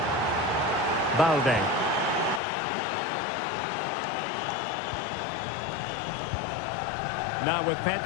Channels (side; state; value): right; drops out; at 2.4 s